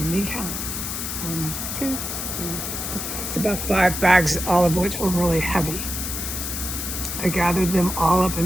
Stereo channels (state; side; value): noise; left; hiss, 4 dB below the sound